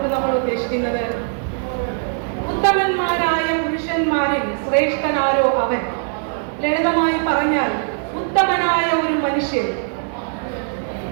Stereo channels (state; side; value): silent; left; 58 dB below the other